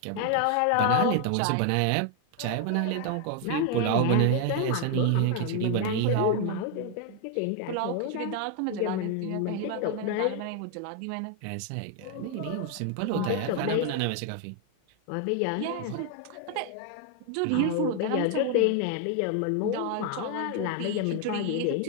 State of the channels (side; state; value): both; different; correlation 0.00